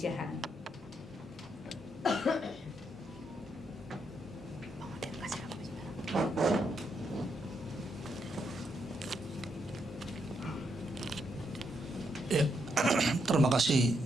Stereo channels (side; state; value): both; normal; correlation 0.79